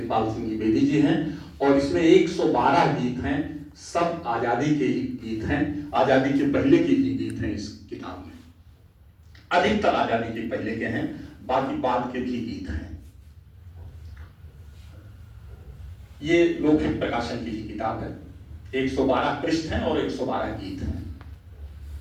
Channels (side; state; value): both; identical; correlation 1.00